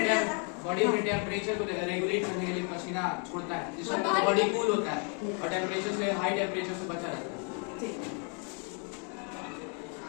बॉडी में टेम्परेचर को रेगुलेट करने के लिए पसीना छोड़ता है, जिससे बॉडी कूल होता है और टेम्परेचर से, हाई टेम्परेचर से बचा रहता है। ठीक।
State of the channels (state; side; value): quieter; right; 39.2 dB